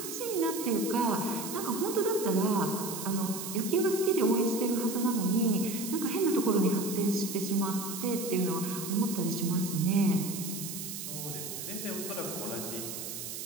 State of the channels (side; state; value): right; noise; hiss, 7 dB below the sound